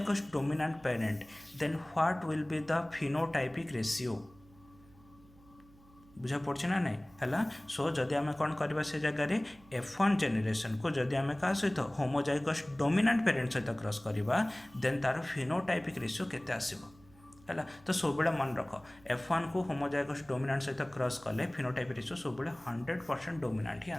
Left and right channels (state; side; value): noise; right; hum, 26 dB below the sound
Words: dominant parent, then what will be the phenotypic ratio? बुझा पड़े ना नहीं है सो जदि आम कौन करवा से जगह F1 जेनेरेशन को जदि आम क्या सहित होमोजाइगस डोमिनेंट पेरेंट सहित क्रॉस करवा देन तार फिनोटाइपिक रेशियो केते आसीबो है तो सब मन रख F1 को होमोजाइगस डोमिनेंट सहित क्रॉस कले फिनोटाइपिक रेशियो सब 100% डोमिनेंट ही